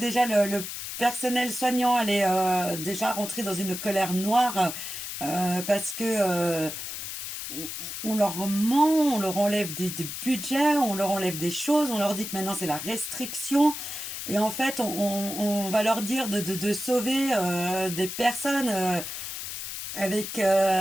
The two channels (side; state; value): left; noise; hiss, 7 dB below the sound